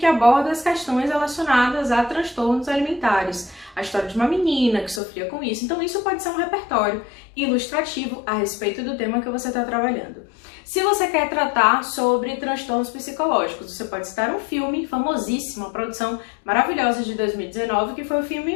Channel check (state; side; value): drops out; right; at 5.0 s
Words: aborda as questões relacionadas a transtornos alimentares, a história de uma menina que sofria com isso. Então isso pode ser um repertório ilustrativo a respeito do tema que você está trabalhando. Se você quer tratar sobre transtornos psicológicos, você pode citar um filme famosíssimo, uma produção maravilhosa de 2019, que foi o